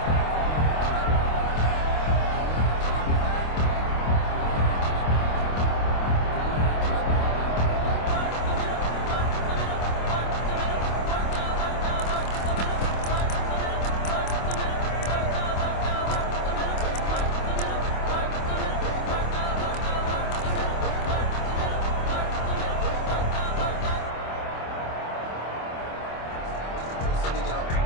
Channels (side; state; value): right; late; 25 ms